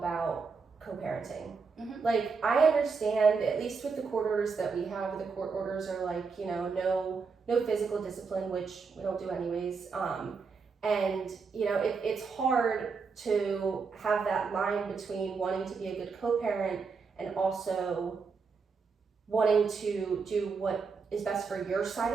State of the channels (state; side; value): quieter; left; 5.0 dB